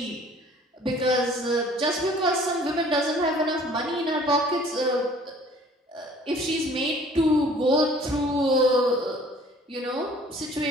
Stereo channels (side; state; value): both; normal; correlation 0.53